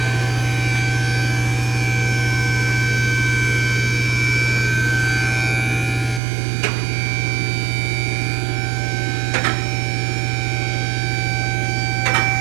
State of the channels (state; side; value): drops out; left; at 6.2 s